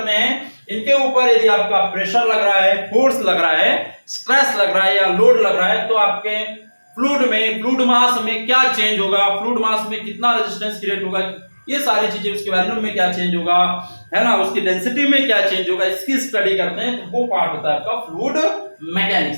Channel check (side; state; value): both; inverted; correlation -1.00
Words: हैं। इनके ऊपर यदि आपका प्रेशर लग रहा है, फोर्स लग रहा है, स्ट्रेस लग रहा है या लोड लग रहा है, तो आपके फ्लूइड में, फ्लूइड मास में क्या चेंज होगा, फ्लूइड मास में कितना रेजिस्टेंस क्रिएट होगा, ये सारी चीजें, उसके वॉल्यूम में क्या चेंज होगा, है ना, उसकी डेंसिटी में क्या चेंज होगा, इसकी स्टडी करते हैं। तो वो पार्ट होता है आपका फ्लूइड